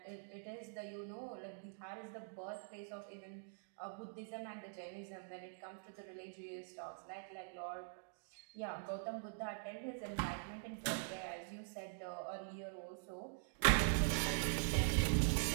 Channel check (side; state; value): left; silent; digital silence